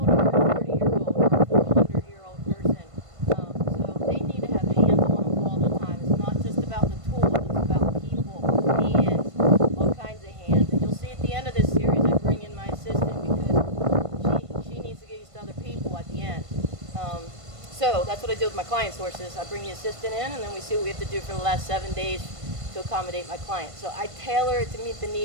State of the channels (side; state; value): left; late; 1.5 ms